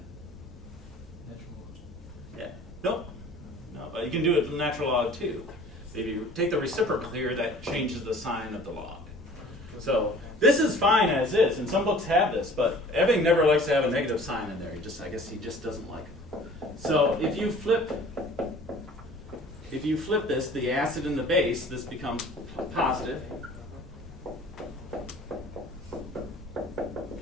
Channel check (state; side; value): normal; both; correlation 0.48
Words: Natural log. Yeah. Nope. No, but you can do it with natural log too. If you take the reciprocal here, that changes the sign of the log. So this is fine as is, and some books have this, but Ebbing never likes to have a negative sign in there. I guess he just doesn't like it. So if you flip this, the acid and the base, this becomes positive.